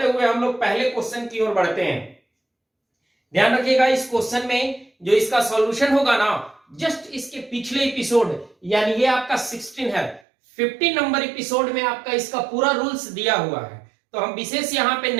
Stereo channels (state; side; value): drops out; left; at 10.2 s